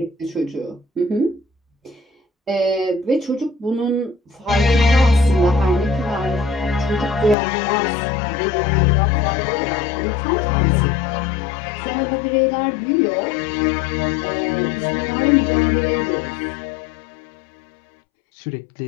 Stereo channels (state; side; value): drops out; right; at 7.4 s